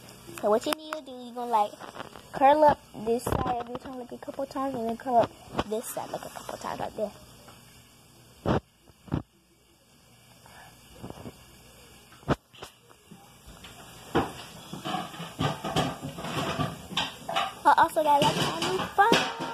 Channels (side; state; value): both; identical; correlation 1.00